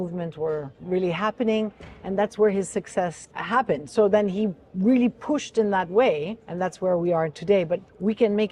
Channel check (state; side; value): identical; both; correlation 1.00